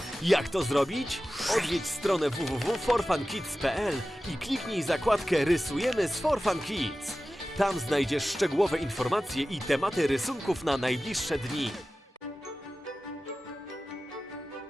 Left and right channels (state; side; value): normal; both; correlation 0.95